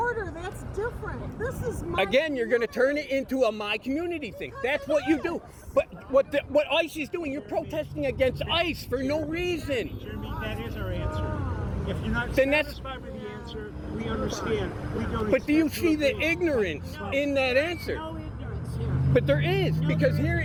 that's different. This is my Again, you're going to turn it into a my community thing. That's what you do. But what ICE is doing, you're protesting against ICE for no reason. Jeremy, that is our answer. If you're not Then that's- satisfied with the answer, we understand. We don't. But do you expect see to the agree. ignorance in that answer? No ignorance here. But there is, because here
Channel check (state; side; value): identical; both; correlation 1.00